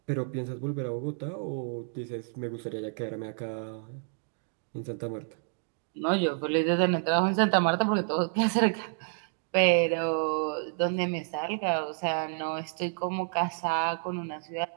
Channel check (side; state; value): left; silent; digital silence